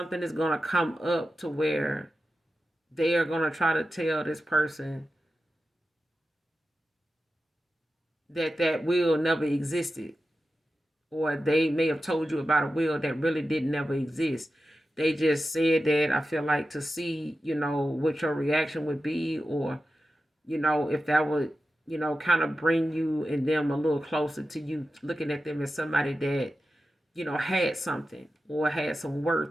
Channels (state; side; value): normal; both; correlation 0.92